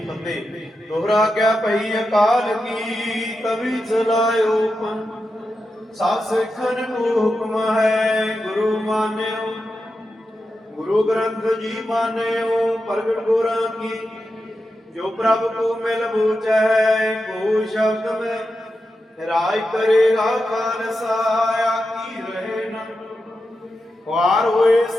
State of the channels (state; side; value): normal; both; correlation 0.89